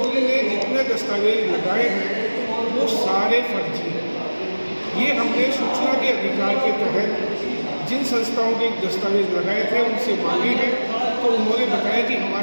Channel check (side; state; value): both; inverted; correlation -1.00